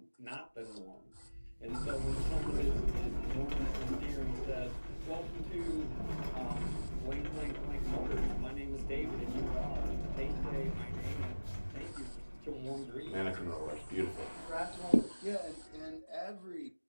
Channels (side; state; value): both; inverted; correlation -1.00